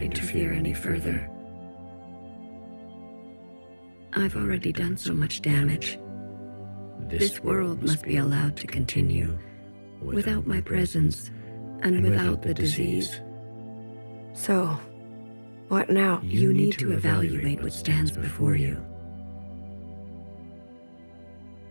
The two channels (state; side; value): inverted; both; correlation -1.00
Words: interfere any further. I've already done so much damage. This world must be allowed to continue without my presence and without the disease. So, what now? You need to evaluate what stands before you.